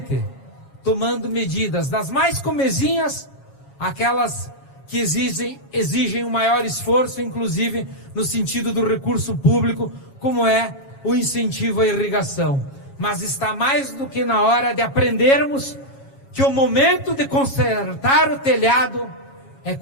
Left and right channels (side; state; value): right; late; 7.3 ms